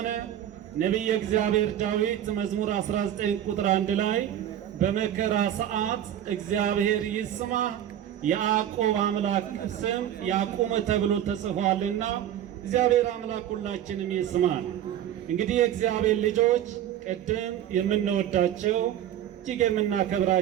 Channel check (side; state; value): left; quieter; 11.1 dB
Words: ነቢየ እግዚአብሔር ዳዊት መዝሙር 19 ቁጥር 1 ላይ በመከራ ሰዓት እግዚአብሔር ይስማ የያዕቆብ አምላክ ስም ያቁም ተብሎ ተጽፏልና እግዚአብሔር አምላክ ሁላችንም ይስማል። እንግዲህ የእግዚአብሔር ልጆች ቅድም የምንወዳቸው እጅግ